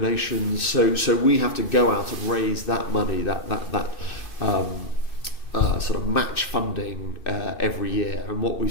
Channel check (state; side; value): late; right; 2.6 ms